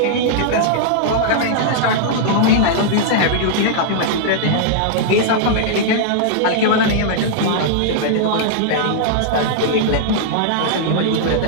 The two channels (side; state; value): both; different; correlation -0.01